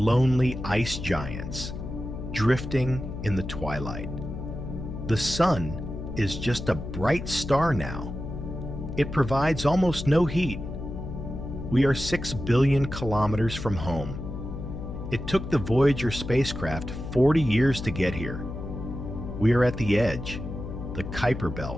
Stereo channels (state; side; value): noise; left; hum, 8 dB below the sound